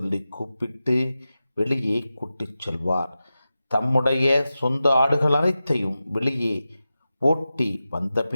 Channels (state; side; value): inverted; both; correlation -0.93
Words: கூப்பிட்டு வெளியே கூட்டிச் செல்வார். தம்முடைய சொந்த ஆடுகள் அனைத்தையும் வெளியே ஓட்டி